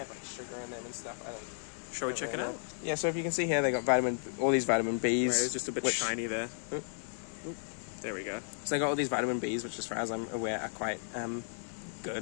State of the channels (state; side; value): silent; right; digital silence